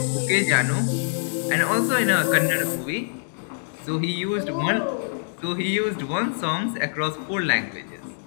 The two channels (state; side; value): silent; right; digital silence